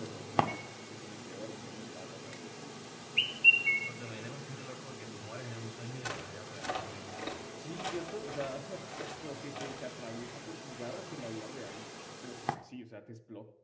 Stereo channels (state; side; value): identical; both; correlation 1.00